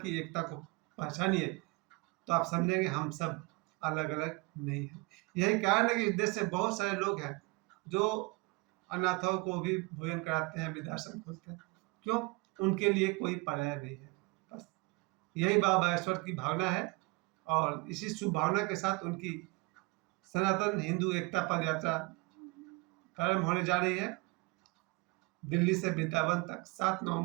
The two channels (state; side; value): quieter; left; 26.0 dB